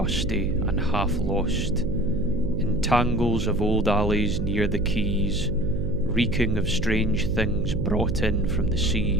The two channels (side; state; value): right; noise; hum, 4 dB below the sound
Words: and half lost, in tangles of old alleys near the quays, reeking of strange things brought in from the